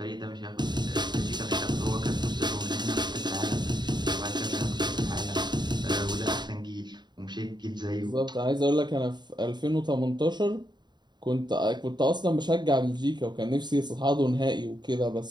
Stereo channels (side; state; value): left; late; 0.21 ms